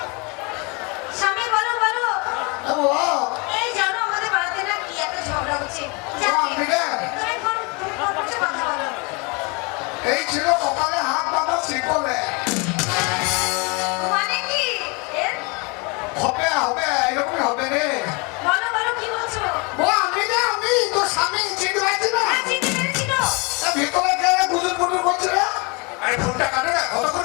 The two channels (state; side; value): quieter; right; 30.0 dB